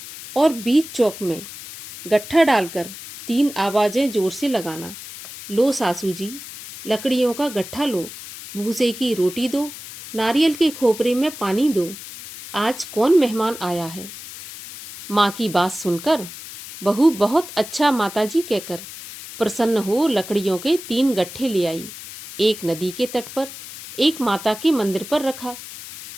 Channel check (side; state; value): left; noise; hiss, 13 dB below the sound